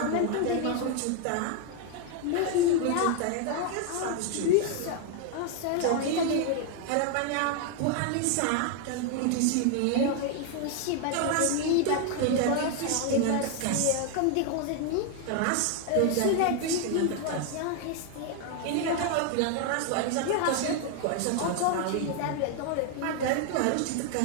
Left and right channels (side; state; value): both; different; correlation 0.00